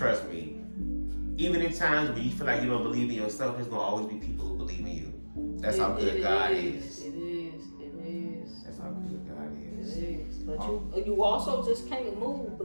me, even in times when you feel like you don't believe in yourself, there's going to always be people who believe in you. That's how good God is. It is. That's how good God is. It is. But you also just can't move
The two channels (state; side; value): inverted; both; correlation -1.00